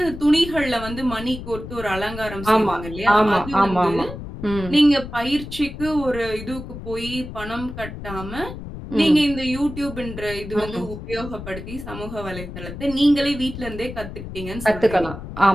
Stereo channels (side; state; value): left; noise; rumble, 10 dB below the sound